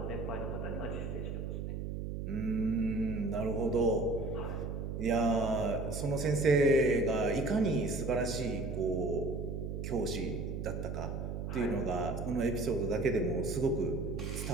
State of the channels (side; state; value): right; noise; hum, 4 dB below the sound